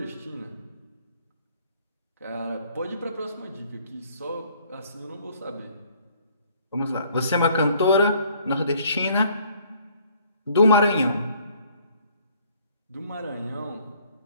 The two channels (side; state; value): both; inverted; correlation -0.61